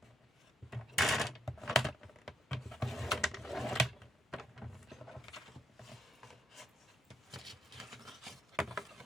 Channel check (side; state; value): both; normal; correlation 0.76